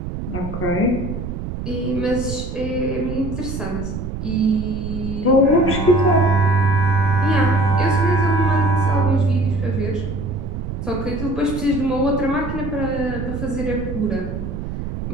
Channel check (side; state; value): right; noise; rumble, 6 dB below the sound